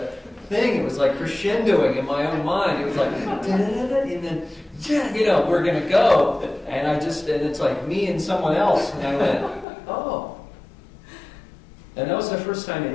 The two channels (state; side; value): drops out; right; at 9.7 s